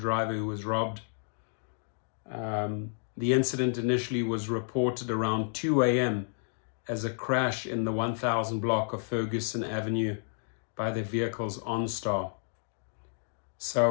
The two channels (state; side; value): silent; right; digital silence